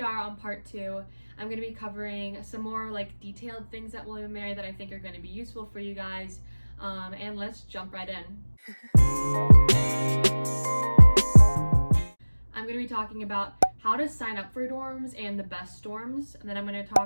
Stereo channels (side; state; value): both; inverted; correlation -1.00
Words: on part 2. I'm going to be covering some more like detailed things at William & Mary that I think are going to be useful for you guys. And let's jump right in. I'm going to be talking about how to sign up for dorms and the best dorms, and then I'm going to